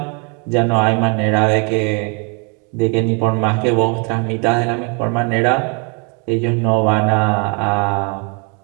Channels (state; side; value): quieter; left; 35.6 dB